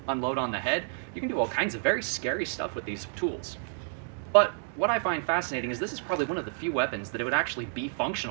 unload on the head. You can do all kinds of very scary stuff with these tools. But what I find fascinating is this is probably one of the few weapons that it would actually be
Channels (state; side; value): silent; left; 58 dB below the other